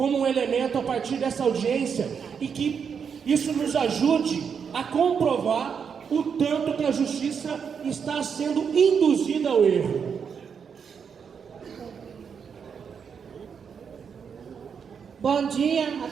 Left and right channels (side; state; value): left; quieter; 6.7 dB